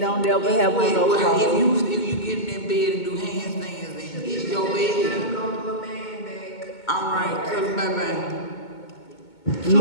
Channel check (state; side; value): late; right; 2.2 ms